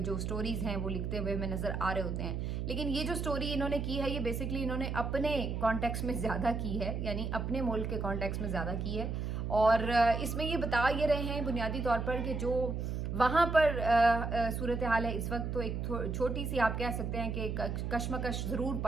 जो स्टोरीज़ हैं वो लिखते हुए हमें नज़र आ रहे होते हैं। लेकिन ये जो स्टोरी इन्होंने की है ये बेसिकली इन्होंने अपने कॉन्टेक्स्ट में ज़्यादा की है, यानी अपने मुल्क के कॉन्टेक्स्ट में ज़्यादा की है। और इसमें ये बता ये रहे हैं बुनियादी तौर पर कि जो वहाँ पर सूरत हाल है इस वक्त, तो एक छोटी सी आप कह सकते हैं कि कशमकश ज़रूर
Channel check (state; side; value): noise; right; hum, 2 dB below the sound